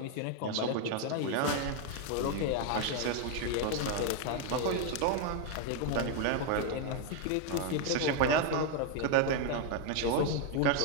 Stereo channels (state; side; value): different; both; correlation 0.01